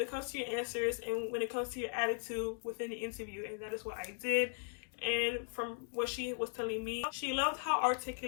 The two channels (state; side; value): silent; right; 52 dB below the other